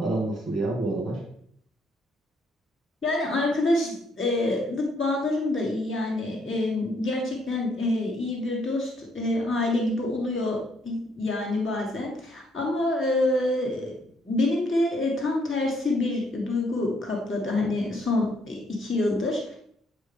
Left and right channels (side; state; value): both; normal; correlation 0.69